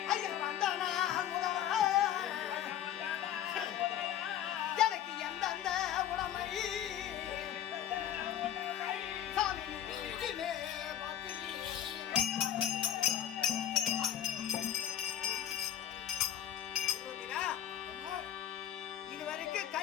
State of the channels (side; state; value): right; quieter; 10.6 dB